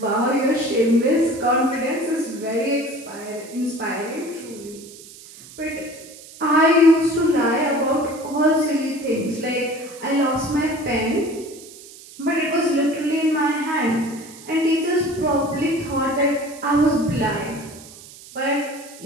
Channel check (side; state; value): right; noise; hiss, 18 dB below the sound